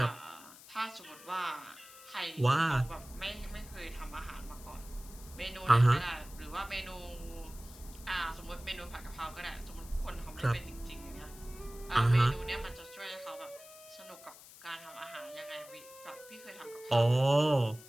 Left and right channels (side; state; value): left; noise; hiss, 18 dB below the sound